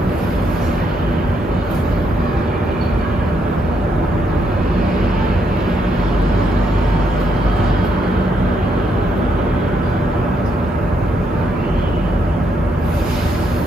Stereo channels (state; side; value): normal; both; correlation 0.76